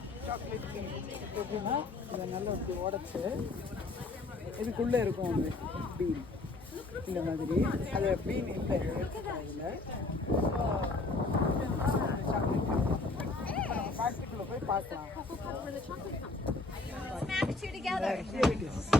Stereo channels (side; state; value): right; quieter; 3.3 dB